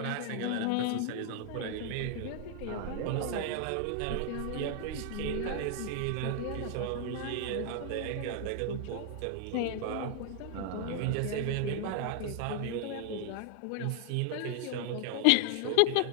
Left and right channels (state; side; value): different; both; correlation 0.00